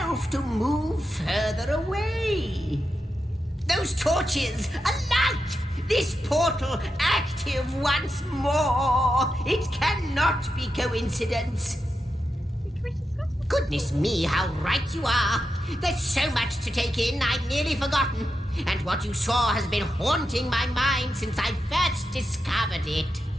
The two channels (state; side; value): normal; both; correlation 0.88